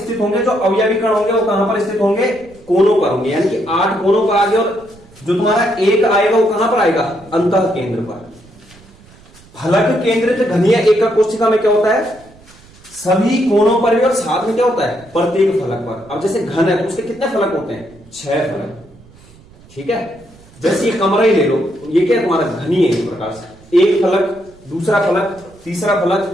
होंगे? जो अवयवी कण होंगे वो कहां पर स्थित होंगे? कोनों पर होंगे, यानी कि 8 कोनों पर आ गए। और जो तुम्हारा एक आएगा वो कहां पर आएगा? अंतः केंद्र पर। फलक केंद्रित घनीय एकक कोष्ठिका में क्या होता है? सभी कोनों पर भी, और साथ में क्या होता है? प्रत्येक फलक पर। अब जैसे घन है तो उसके कितने फलक होते हैं? 6 फलक, ठीक है। जैसे ये कमरा ही ले लो, ये क्या है? तुम्हारा घनी है इस प्रकार से। एक फलक, दूसरा फलक, तीसरा फलक,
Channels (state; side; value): noise; right; rumble, 25 dB below the sound